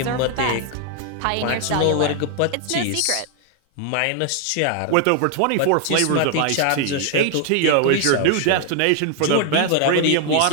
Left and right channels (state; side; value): different; both; correlation 0.00